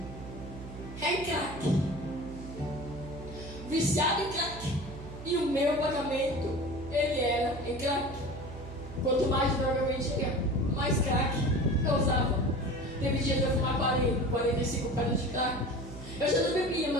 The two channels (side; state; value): right; noise; hum, 12 dB below the sound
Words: é em crack. Viciado em crack. E o meu pagamento, ele era em crack. Quanto mais droga eu vendia, mais crack eu usava. Teve dias de eu fumar 40, 45 pedras de crack. Eu já não bebia